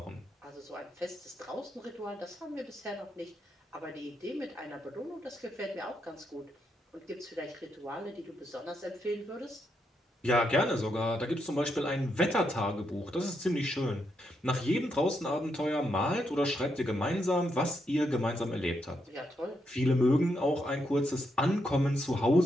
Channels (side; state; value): both; normal; correlation 0.80